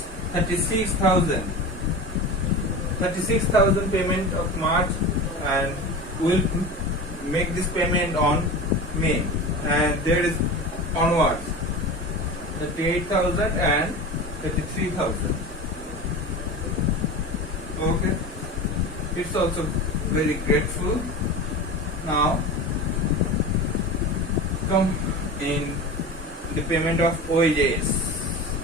36,000. 36,000 payment of March, and we'll make this payment on May, and there is onwards 38,000 and 33,000. Okay, it's also very grateful. Now come in the payment of wages.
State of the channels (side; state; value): both; normal; correlation 0.30